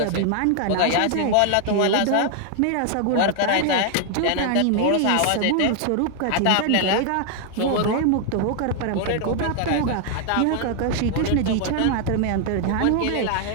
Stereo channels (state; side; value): different; both; correlation 0.00